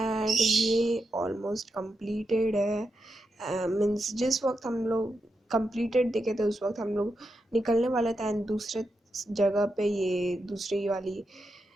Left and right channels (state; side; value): normal; both; correlation 0.86